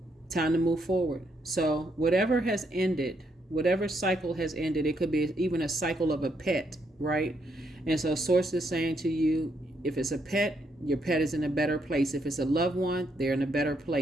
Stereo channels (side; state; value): both; normal; correlation 0.76